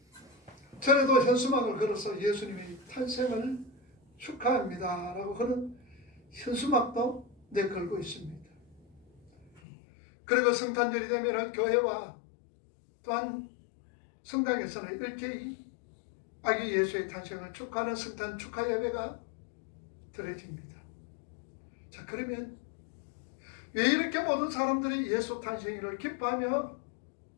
전에도 현수막을 걸어서 예수님의 탄생을 축하합니다 라고 하는 현수막도 내걸고 있습니다. 그리고 성탄절이 되면 교회와 또한 성당에서는 일제히 아기 예수의 탄생을 축하하는 성탄 축하 예배가 드려집니다. 자, 그러면 왜 이렇게 모든 사람들이 예수 탄생일을 기뻐하며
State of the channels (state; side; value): drops out; right; at 9.6 s